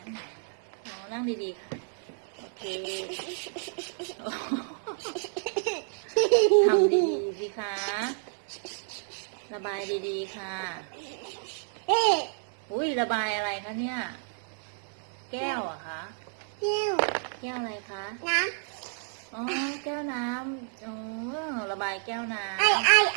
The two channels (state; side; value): silent; left; digital silence